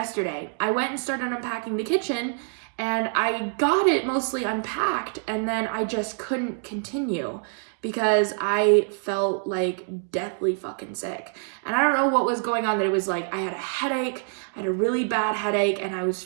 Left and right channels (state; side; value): silent; left; 55 dB below the other